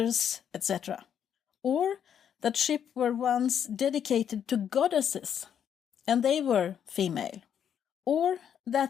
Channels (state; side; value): quieter; right; 8.7 dB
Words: etc. Or that ships were once dedicated to goddesses, and they were female. Or